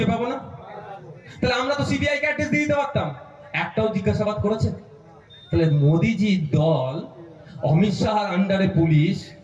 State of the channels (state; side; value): identical; both; correlation 1.00